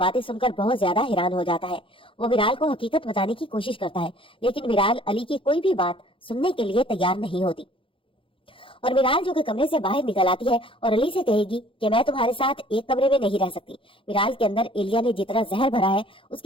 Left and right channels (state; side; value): late; right; 0.25 ms